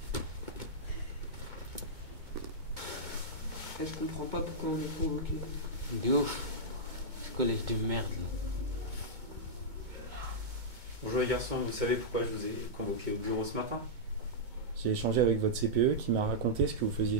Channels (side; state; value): left; late; 2.2 ms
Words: Je comprends pas pourquoi on est convoqué. De ouf. Ce collège de merde là. Bonjour les garçons, vous savez pourquoi je vous ai convoqué au bureau ce matin? J'ai échangé avec votre CPE qui m'a raconté ce que vous faisiez